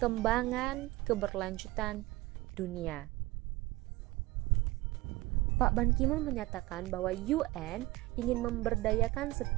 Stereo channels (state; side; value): quieter; left; 20.0 dB